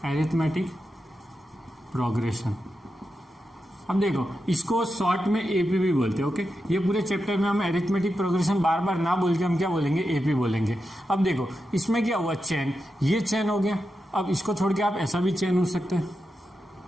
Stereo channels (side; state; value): both; normal; correlation 0.89